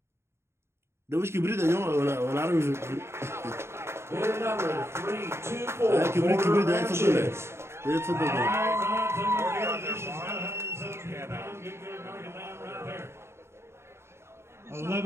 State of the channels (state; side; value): late; left; 0.13 ms